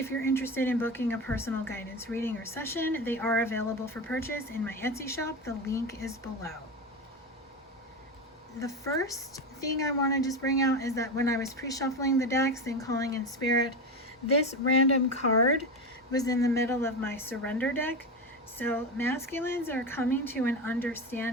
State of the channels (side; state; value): both; normal; correlation 0.19